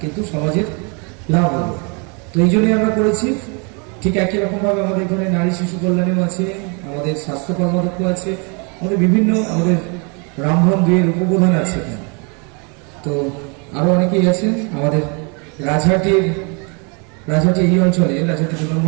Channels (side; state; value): left; quieter; 34.3 dB